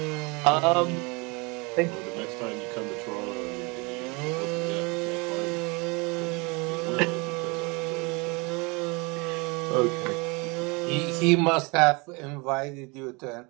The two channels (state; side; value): quieter; left; 28.1 dB